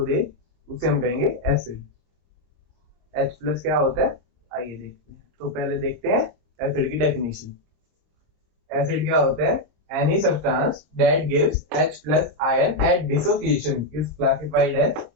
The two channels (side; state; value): left; late; 26 ms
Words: दे, उसे हम कहेंगे एसिड। H+ क्या होता है आइए देखते हैं। तो पहले देखते हैं एसिड की डेफिनेशन। एसिड क्या होता है? Any substance that gives H+ ion at dissociation is classified as